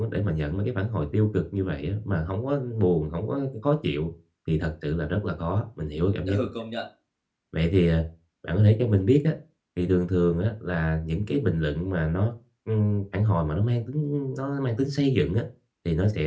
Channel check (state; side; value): identical; both; correlation 1.00